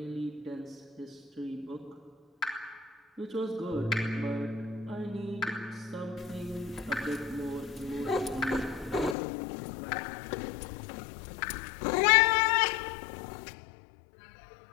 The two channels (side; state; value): right; drops out; at 9.2 s